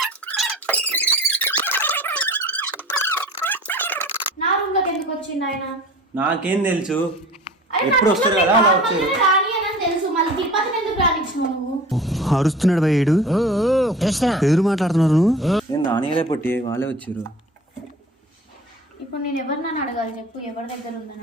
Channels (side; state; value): both; normal; correlation 0.41